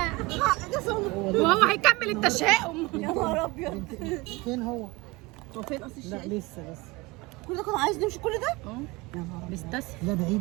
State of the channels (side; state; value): left; quieter; 23.1 dB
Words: وهو هيكمل التشاؤم. يا نهار ابيض. فين هو؟ هو فين قصر لا الشاي؟ لسه كل ده كنا عايز نمشي كل ده؟ يا نهار أبيض. بستسهل. لا